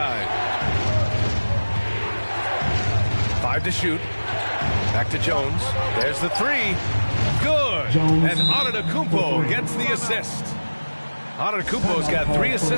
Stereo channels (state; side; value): inverted; both; correlation -1.00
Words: 5 to shoot. Back to Jones. There's the 3. Good. And Antetokounmpo gets the assist. Antetokounmpo's got 3